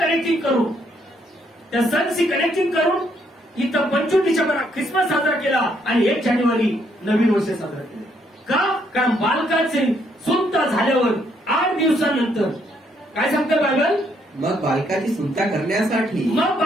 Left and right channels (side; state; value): both; normal; correlation 0.72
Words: करून त्या सणशी कनेक्टिंग करून इथं 25 डिसेंबर ख्रिसमस साजरा केला आणि 1 जानेवारी नवीन वर्ष साजरा केलं. का? कारण बालकाचे सुंता झाल्यावर 8 दिवसानंतर काय सांगतं बायबल? मग बालकाची